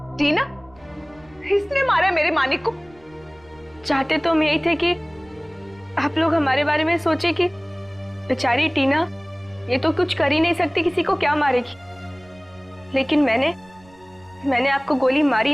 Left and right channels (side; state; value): right; noise; rumble, 27 dB below the sound